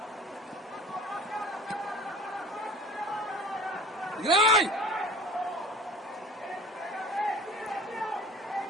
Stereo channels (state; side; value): normal; both; correlation 0.43